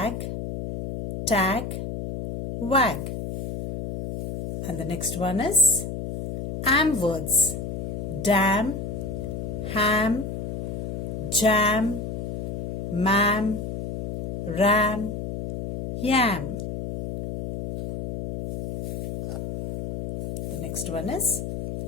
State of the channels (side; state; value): left; noise; hum, 5 dB below the sound